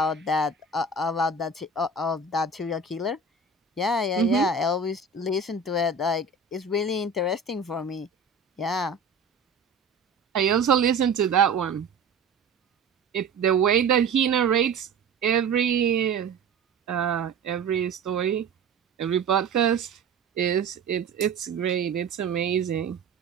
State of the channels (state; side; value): quieter; left; 4.4 dB